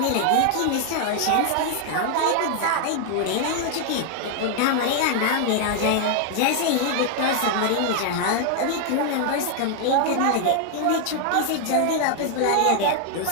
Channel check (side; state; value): both; different; correlation 0.00